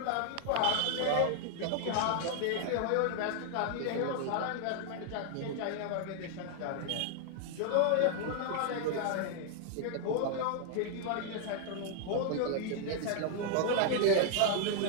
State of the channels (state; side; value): different; both; correlation 0.00